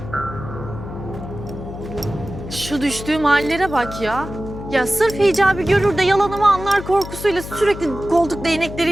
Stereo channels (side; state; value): left; noise; hum, 10 dB below the sound